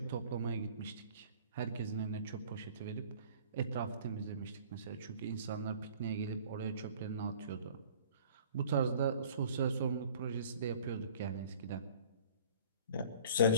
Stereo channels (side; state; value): both; inverted; correlation -0.49